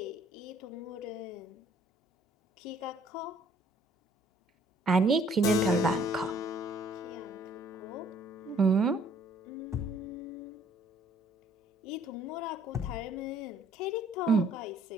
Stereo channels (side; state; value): both; normal; correlation 0.60